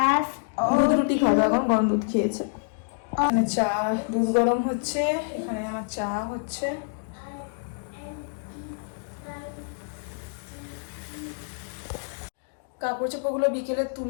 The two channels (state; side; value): silent; right; digital silence